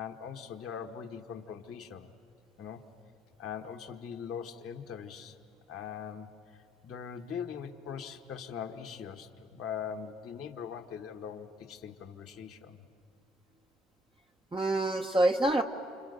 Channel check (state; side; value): normal; both; correlation 0.69